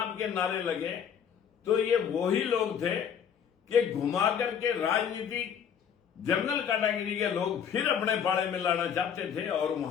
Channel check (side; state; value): right; quieter; 8.0 dB